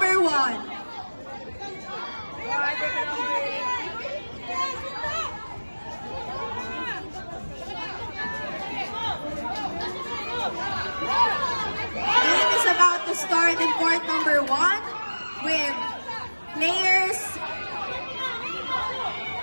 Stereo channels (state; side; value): inverted; both; correlation -1.00